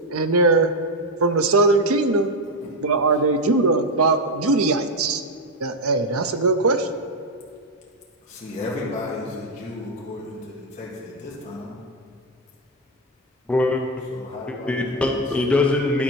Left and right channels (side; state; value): both; normal; correlation 0.07